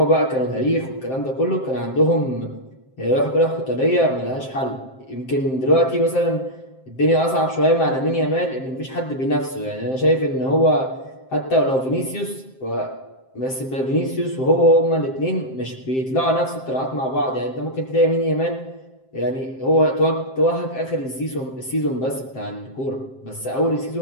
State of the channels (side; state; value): right; late; 7.6 ms